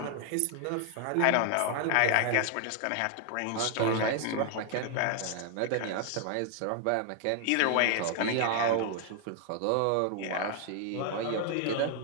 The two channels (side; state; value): both; different; correlation 0.00